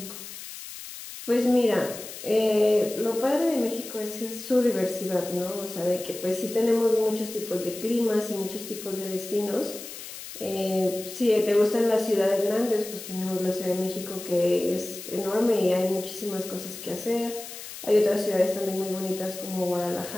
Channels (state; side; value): noise; left; hiss, 12 dB below the sound